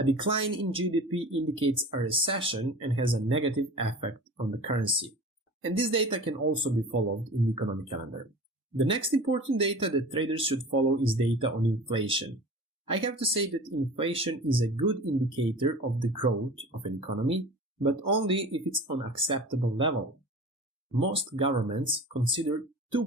decline in GDP indicates a recession and has a negative effect on the currency. And this data can also be followed in the economic calendar. The next important data that traders should follow is data on inflation. I have to say that inflation is a good indicator of the growth of an economy, but only if it's on acceptable level. Most governments consider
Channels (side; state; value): both; normal; correlation 0.38